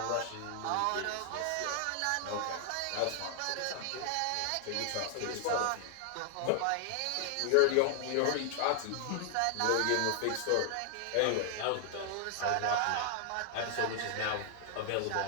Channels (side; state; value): both; different; correlation 0.00